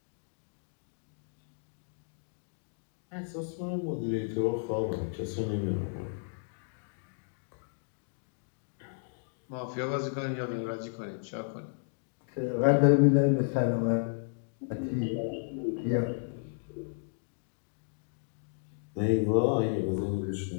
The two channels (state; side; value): silent; right; digital silence